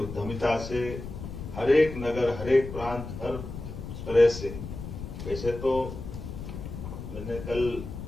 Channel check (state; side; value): noise; left; rumble, 9 dB below the sound